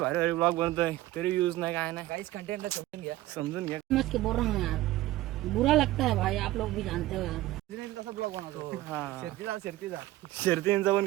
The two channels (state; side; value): quieter; left; 16.4 dB